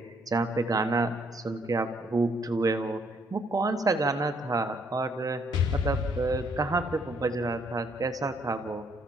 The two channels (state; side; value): normal; both; correlation 0.68